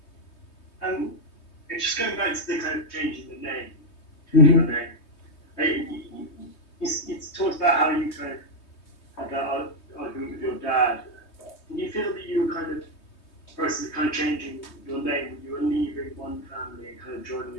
Just going back to the kind of changing the name, Mm-hmm. It's talked about how you kind of had that argument with your dad. Did you feel that you were kind of process of kind of changing your name? You were leaving one family and kind of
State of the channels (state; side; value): late; right; 3.2 ms